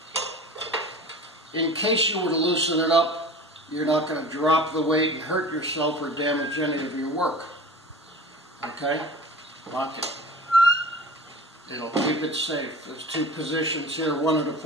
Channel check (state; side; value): normal; both; correlation 0.38